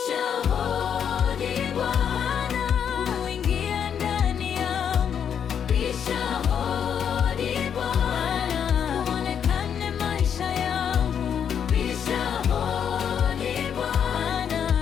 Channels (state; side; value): quieter; right; 8.1 dB